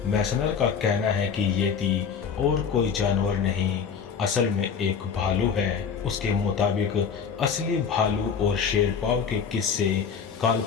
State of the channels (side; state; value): right; quieter; 6.5 dB